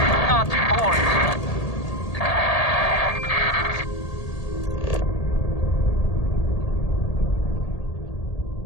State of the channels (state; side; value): late; right; 1.8 ms